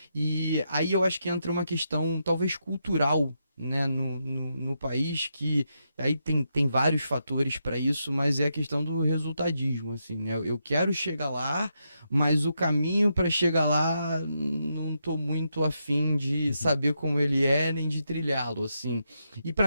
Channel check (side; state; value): both; inverted; correlation -0.83